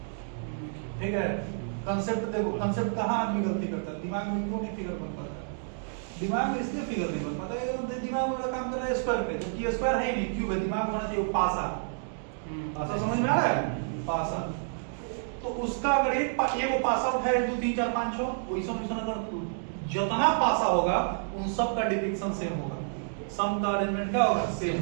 ठीक है। कांसेप्ट देखो, कांसेप्ट कहाँ आदमी गलती करता है, दिमाग में क्यों नहीं फिगर बन पाता? दिमाग में इसलिए फिगर नहीं बन पाता है, दिमाग वाला काम कर रहा है स्क्वायर पे, जबकि स्क्वायर है ही नहीं, क्यूब है। दिमाग होना चाहिए पासा। पासा समझ में आ रहा है? पासा। तो उसका अगर एक वो पासा उठाए 1 2 3 4 5 6 वैसा अगर जितना पासा होगा उन सब का डिपिक्शन सेम होगा, सम का अरेंजमेंट क्या होगा? सेम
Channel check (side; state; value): left; silent; digital silence